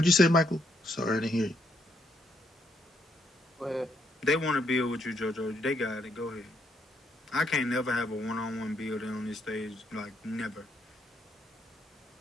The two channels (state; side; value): normal; both; correlation 0.74